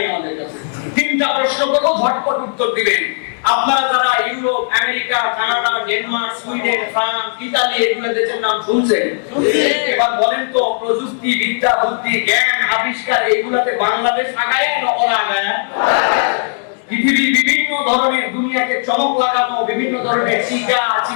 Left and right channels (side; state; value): right; silent; digital silence